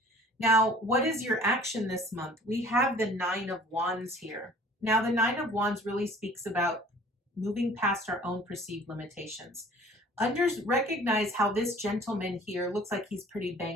Now, what is your action this month? We have the Nine of Wands here. Now, the Nine of Wands really speaks about moving past our own perceived limitations. Recognize how this gentleman here looks like he's pretty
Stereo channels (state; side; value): normal; both; correlation 0.50